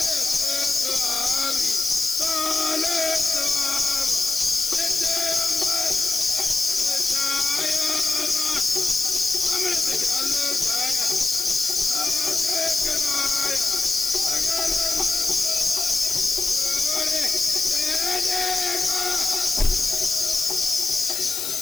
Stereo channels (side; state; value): left; noise; hiss, 2 dB below the sound